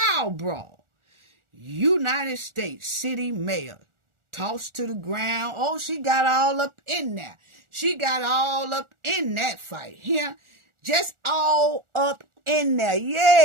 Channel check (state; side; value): late; left; 1.4 ms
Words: brawl. United States City Mayor tossed to the ground. Oh, she got all up in there. She got all up in that fight. Here, just all up in there.